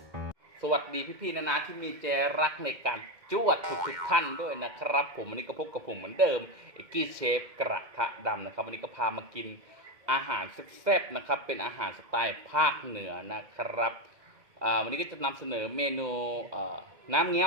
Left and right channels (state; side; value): late; left; 2.1 ms